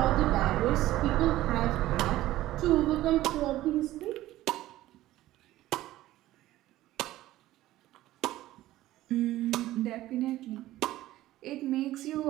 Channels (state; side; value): quieter; left; 15.5 dB